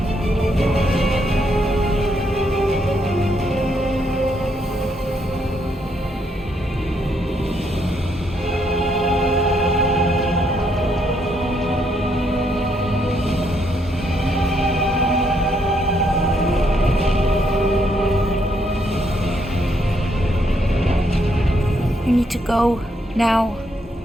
You need to go now.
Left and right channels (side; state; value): both; normal; correlation 0.74